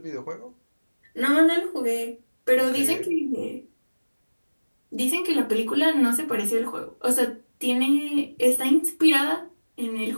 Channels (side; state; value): both; inverted; correlation -1.00